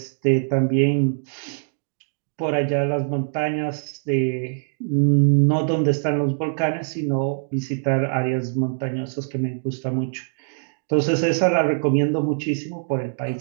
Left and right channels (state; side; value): silent; left; digital silence